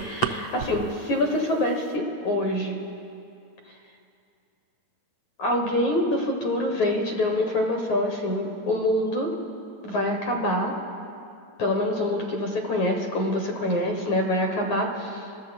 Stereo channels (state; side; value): late; right; 8.5 ms